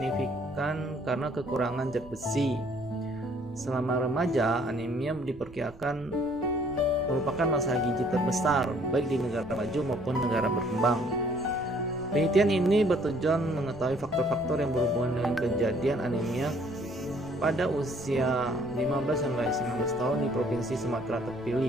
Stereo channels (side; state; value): right; noise; rumble, 21 dB below the sound